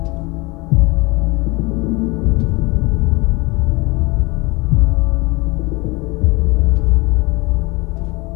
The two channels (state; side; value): quieter; right; 24.9 dB